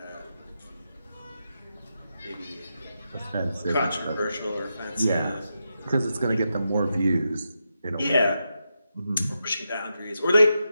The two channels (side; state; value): both; inverted; correlation -0.86